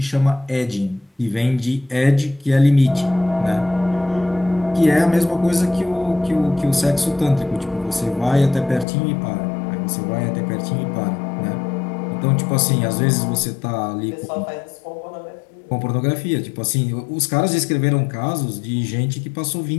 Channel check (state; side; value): drops out; right; at 8.8 s